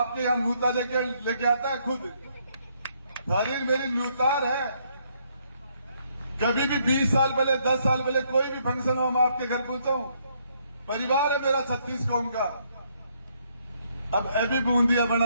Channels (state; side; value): inverted; both; correlation -0.71